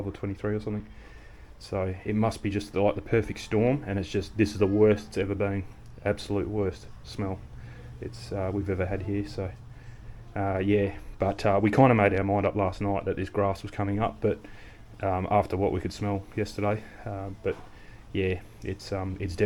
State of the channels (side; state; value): both; identical; correlation 1.00